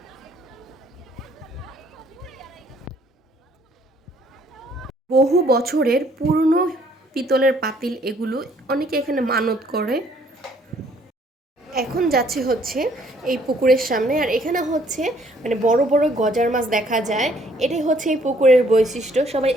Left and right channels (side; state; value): both; normal; correlation 0.63